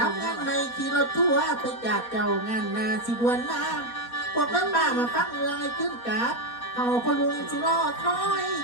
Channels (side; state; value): right; late; 4.2 ms